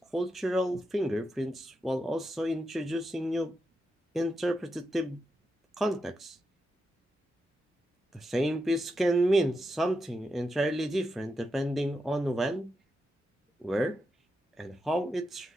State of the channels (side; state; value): both; normal; correlation 0.87